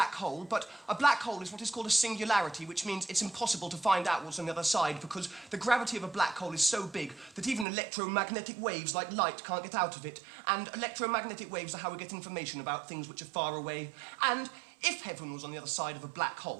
hole, but a black hole is what is called a singularity, which means it's impossible to find out what's on the other side because the gravity of a black hole is so big that even electromagnetic waves like light can't get out of it. And electromagnetic waves are how we get information about things which are far away. And if heaven was on the other side of a black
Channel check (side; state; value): left; drops out; at 7.7 s